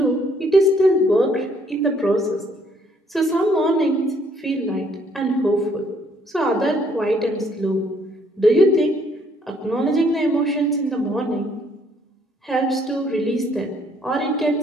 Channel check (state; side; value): normal; both; correlation 0.66